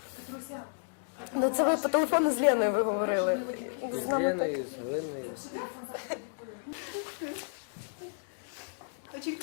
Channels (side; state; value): right; silent; digital silence